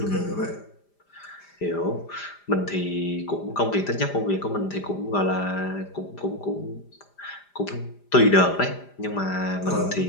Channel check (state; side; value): late; right; 5.0 ms